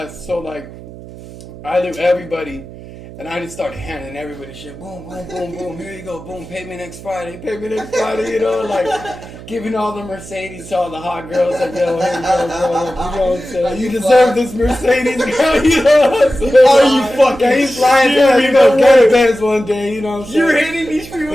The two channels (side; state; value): right; noise; hum, 16 dB below the sound